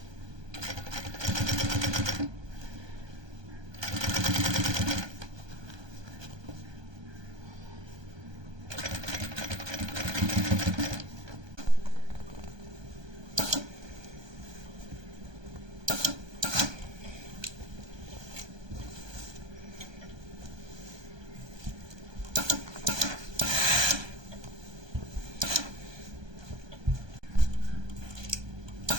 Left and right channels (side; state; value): left; late; 1.2 ms